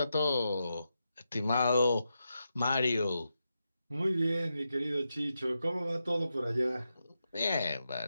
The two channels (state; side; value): inverted; both; correlation -0.87